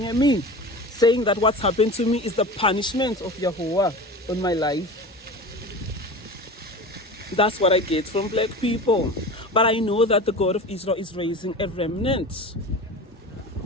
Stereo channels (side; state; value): both; normal; correlation 0.32